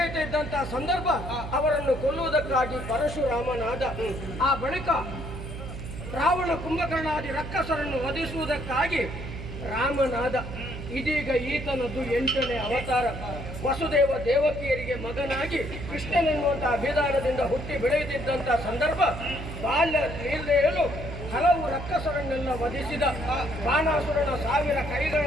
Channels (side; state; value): right; noise; hum, 9 dB below the sound